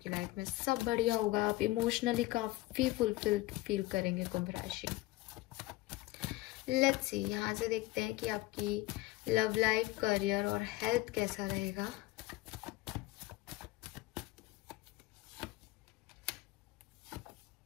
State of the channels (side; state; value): right; quieter; 19.1 dB